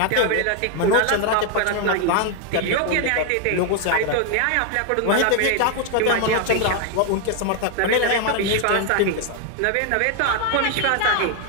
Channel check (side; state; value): both; different; correlation 0.00